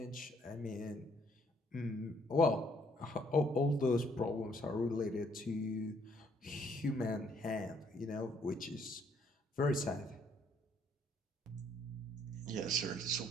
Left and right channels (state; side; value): normal; both; correlation 0.67